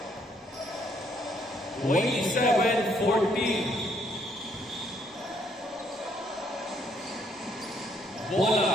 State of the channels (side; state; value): both; normal; correlation 0.69